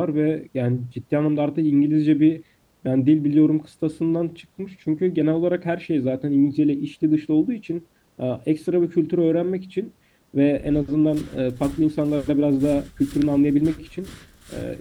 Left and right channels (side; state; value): both; identical; correlation 1.00